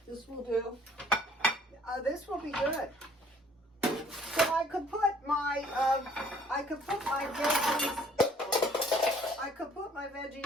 This will do. This will be good. So I could put my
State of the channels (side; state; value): both; normal; correlation 0.58